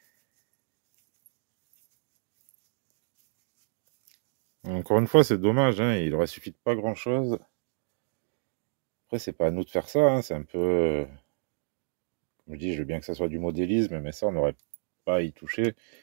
Encore une fois, c'est dommage, hein, il aurait suffi de pas grand-chose. Après, c'est pas à nous de faire ça, hein, c'est un peu... Comme je dis, je veux bien que ça soit du modélisme, mais ça, on n'aurait pas à y toucher.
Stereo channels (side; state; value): left; silent; digital silence